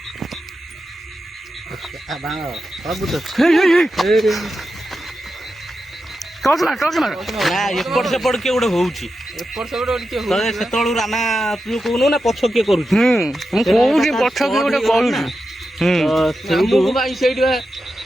ଟର୍ଚ୍ଚ ମାର। ନା ଏପଟ ସେପଟ କିଏ ଗୋଟେ ହଉଛି, ସେତେବେଳୁ ରାନା ତୁ କହୁନୁ ନା ପଛ କିଏ କରୁଛି? ମୁଁ କହୁଛି ପଛ କିଏ ଗୋଟେ କରୁଛି। ସେଇଠି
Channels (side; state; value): both; normal; correlation 0.89